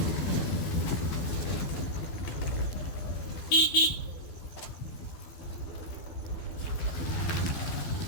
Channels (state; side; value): late; right; 12 ms